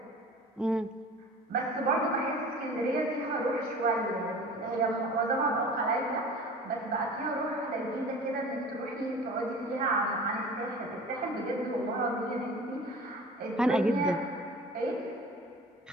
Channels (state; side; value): normal; both; correlation 0.41